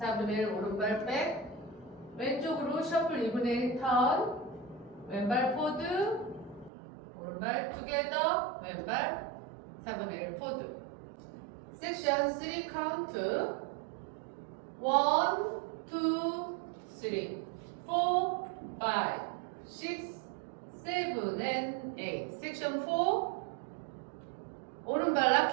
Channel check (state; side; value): drops out; left; at 6.7 s